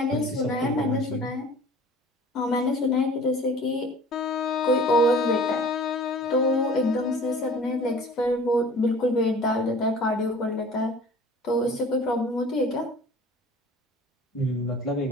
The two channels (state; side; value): normal; both; correlation 0.45